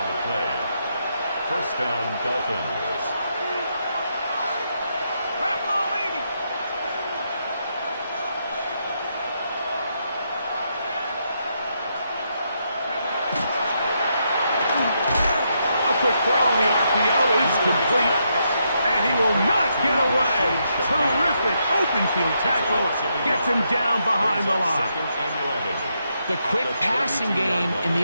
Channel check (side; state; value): both; inverted; correlation -0.79